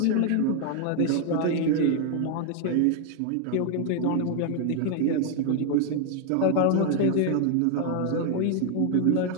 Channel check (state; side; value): different; both; correlation 0.00